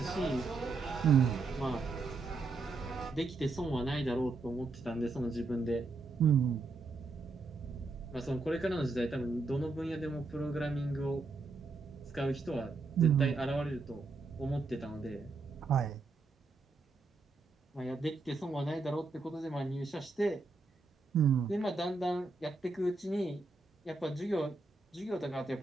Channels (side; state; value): left; quieter; 3.7 dB